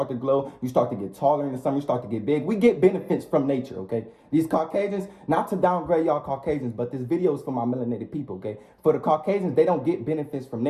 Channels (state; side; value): identical; both; correlation 1.00